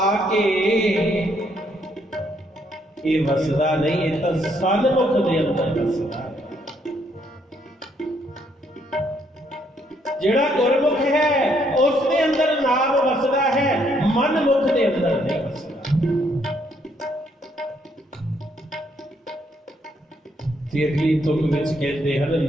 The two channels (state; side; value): normal; both; correlation 0.71